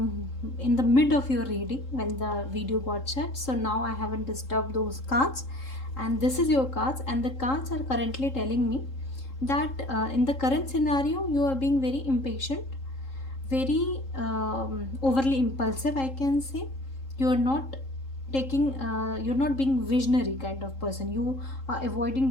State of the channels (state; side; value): late; right; 3.7 ms